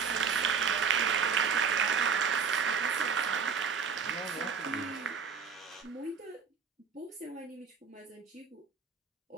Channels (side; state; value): left; quieter; 6.0 dB